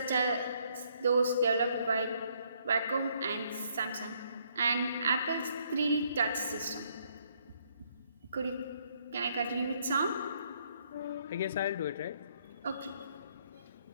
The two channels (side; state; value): both; inverted; correlation -0.69